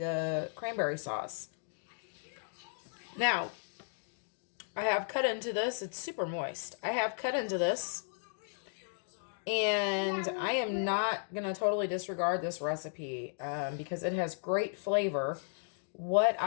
cranberry sauce. Now, I have cut into this. It's super moist. I have cut into this, and I am not going to totally disregard this recipe because it has great flavor. What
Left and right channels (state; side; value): silent; right; digital silence